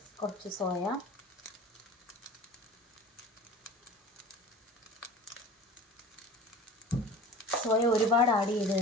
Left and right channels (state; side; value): normal; both; correlation 0.40